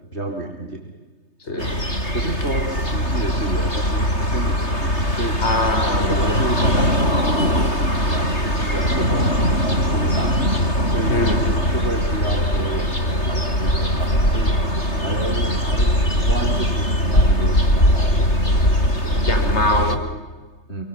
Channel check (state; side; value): late; right; 3.3 ms